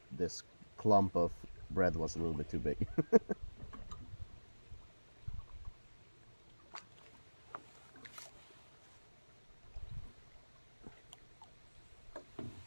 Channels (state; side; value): inverted; both; correlation -1.00